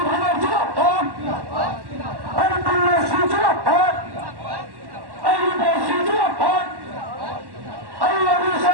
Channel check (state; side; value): late; left; 1.1 ms